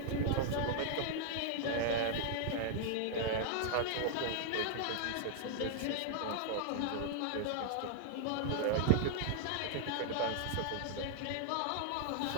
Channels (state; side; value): different; both; correlation 0.00